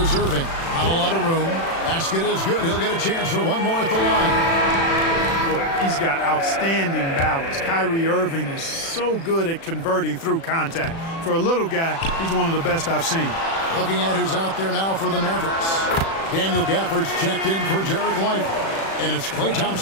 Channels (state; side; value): late; right; 36 ms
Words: Irving. Not a lot of room. Basket is good. He'll get a chance for one more at the line. Boy, he's got outstanding balance. Kyrie Irving is so good at converting through contact. For a little guy, he's one of the best I've seen. Looking at who's out there now for the Mavericks. Daniel Gafford's checked in for Derek Lively. And it's Klay